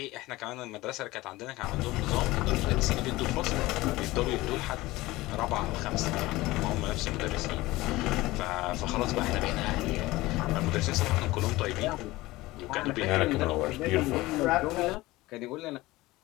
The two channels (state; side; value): quieter; right; 19.2 dB